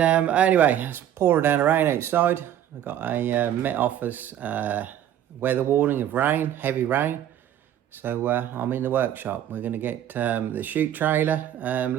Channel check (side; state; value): left; quieter; 11.0 dB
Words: anyway, it's pouring down the rain outside. We've got a Met Office weather warning of rain, heavy rain. So I'm in the workshop. We're going to get the chute trailer